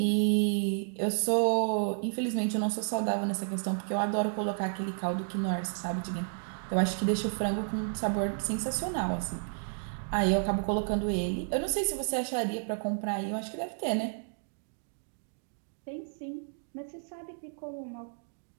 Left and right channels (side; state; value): left; silent; digital silence